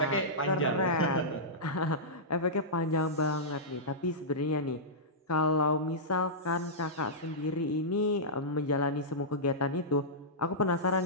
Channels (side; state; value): both; normal; correlation -0.14